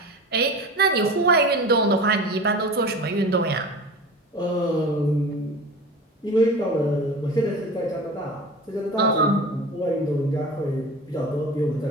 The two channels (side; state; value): both; normal; correlation 0.35